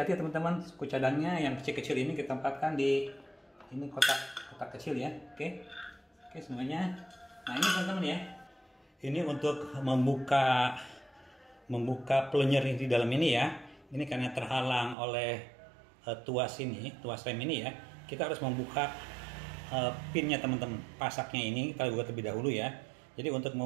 teman-teman. Suku cadangnya yang kecil-kecil ini kita tempatkan di ini kotak kecil ya. Oke, semuanya. Nah ini teman-teman ya. Ini untuk membuka plunger di dalam ini ya. Ini karena terhalang oleh tuas rem ini ya. Kita harus membuka pinnya teman-teman. Pasaknya ini kita buka terlebih dahulu ya. Jadi untuk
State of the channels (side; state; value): left; drops out; at 15.0 s